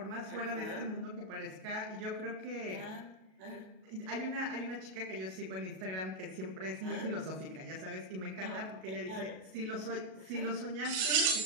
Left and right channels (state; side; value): late; left; 37 ms